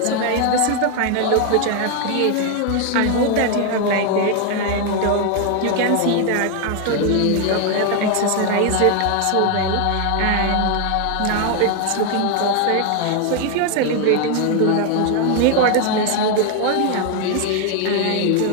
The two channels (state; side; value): different; both; correlation 0.01